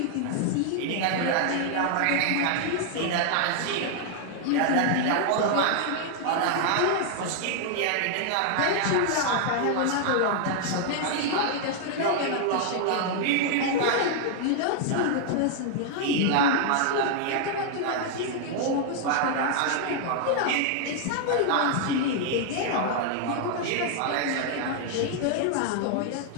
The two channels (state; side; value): different; both; correlation 0.00